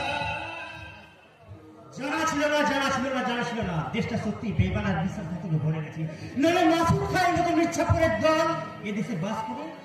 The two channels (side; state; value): both; identical; correlation 1.00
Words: জানা ছিল না দেশটা সত্যি বেবানার বিশ্বাসঘাতকে ভরে গেছে। নইলে মাসুদ খায়ের মতো মির্জাপুরের দল এদেশে বাস করে